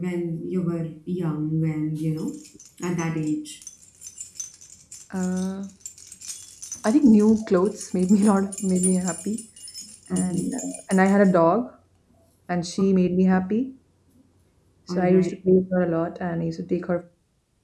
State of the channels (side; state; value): both; identical; correlation 1.00